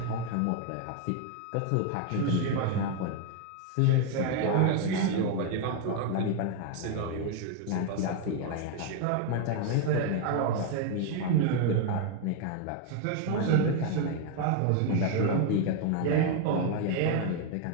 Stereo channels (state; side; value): different; both; correlation 0.01